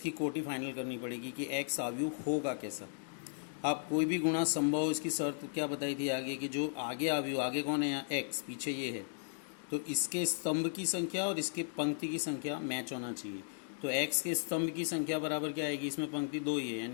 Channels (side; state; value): right; silent; digital silence